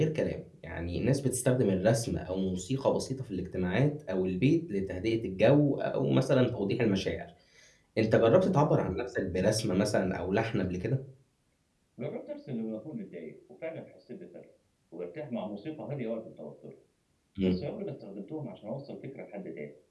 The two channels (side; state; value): both; identical; correlation 1.00